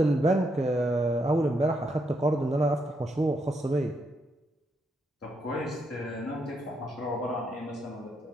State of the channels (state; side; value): normal; both; correlation 0.78